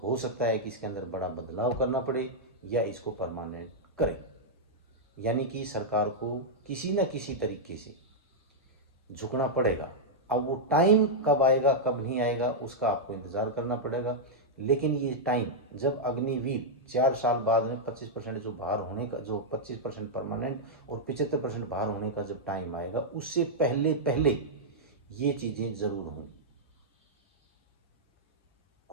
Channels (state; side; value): normal; both; correlation -0.06